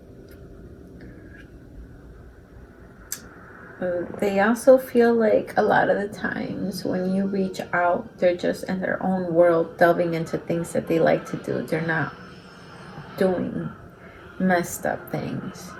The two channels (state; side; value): identical; both; correlation 1.00